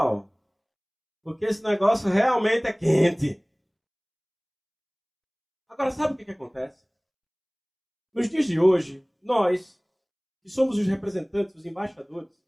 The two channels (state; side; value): identical; both; correlation 1.00